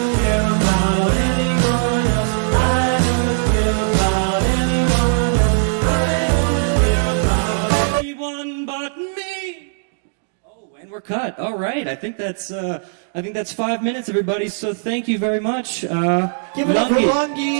Anyone but me. Oh, and we're cut. All right. I think that's 5 minutes, everybody. So thank you very much. Give it up for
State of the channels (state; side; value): silent; left; 66 dB below the other